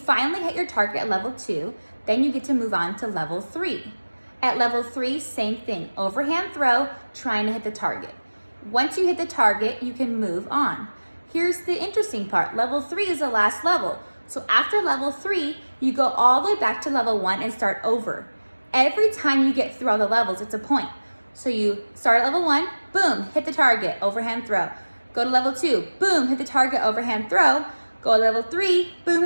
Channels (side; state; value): both; inverted; correlation -1.00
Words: hit your target at level 2, then you get to move on to level 3. At level 3, same thing, overhand throw, trying to hit the target. Once you hit the target, you can move on. Here's the interesting part, level 3 is the last level. So after level 3, you go all the way back to level 1 and start over. Every time you get through all the levels, it's a point. So you start at level 1, boom, hit the target, overhand throw. Go to level 2, boom, hit the target, overhand throw. Go to level 3, boom,